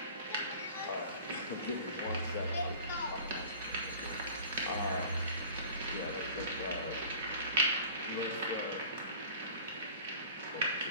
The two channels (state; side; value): inverted; both; correlation -0.44